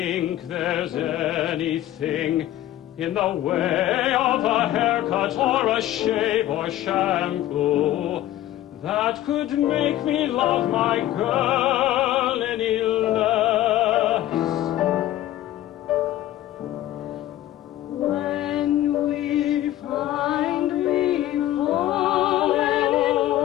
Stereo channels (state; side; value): quieter; right; 13.8 dB